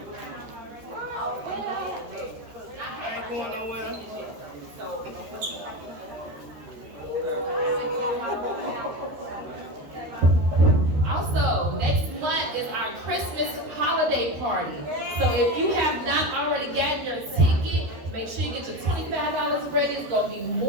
I ain't going nowhere. So So if you have not already gotten your ticket, make sure you get your $25 ready. It's gonna be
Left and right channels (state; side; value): late; left; 13 ms